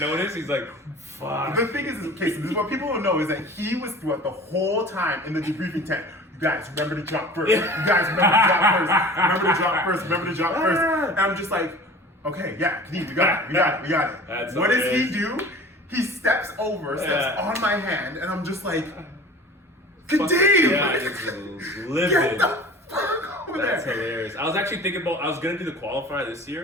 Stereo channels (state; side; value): normal; both; correlation 0.41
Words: he's like, fuck. The thing is, okay, so this is what people don't know, is that he was throughout the whole time in the debriefing tent. You guys, remember to drop first. You guys, remember to drop first. Remember to drop first. Remember to drop first. And I'm just like, okay, yeah, Kadeem, we got it. What does he do? He steps on my hand, and I'm just like, Kadeem! Get the fuck over there! That's hilarious. I was actually thinking about, I was gonna do the qualifier this